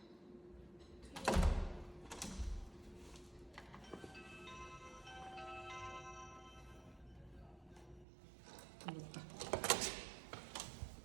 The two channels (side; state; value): left; drops out; at 8.1 s